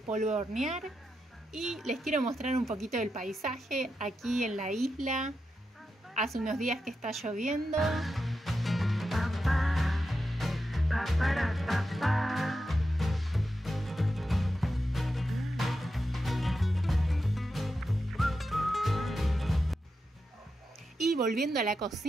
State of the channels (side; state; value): both; normal; correlation 0.88